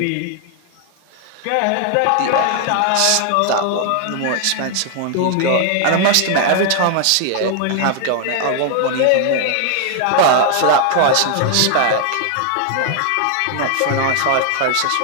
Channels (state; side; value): different; both; correlation 0.00